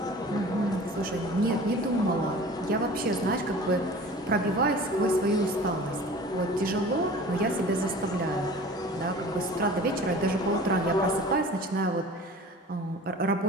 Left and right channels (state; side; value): normal; both; correlation 0.42